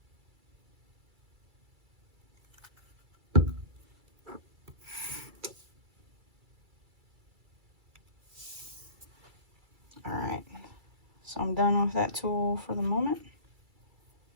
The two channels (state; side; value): late; left; 2.3 ms